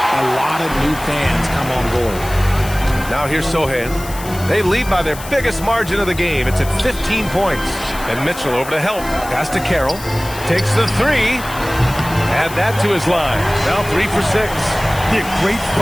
lot of new fans come on board. Now here's Sohan. They lead by their biggest margin of the game. It's at 15 points. And Mitchell over to help. Pass to Carroll. Takes the three. Add that to his line. Now 3 for 6. Yeah, great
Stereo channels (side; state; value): left; noise; hiss, 14 dB below the sound